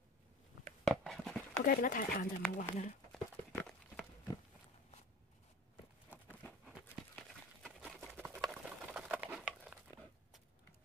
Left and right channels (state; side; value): normal; both; correlation 0.40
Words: OK，變得太硬就唔好玩啦。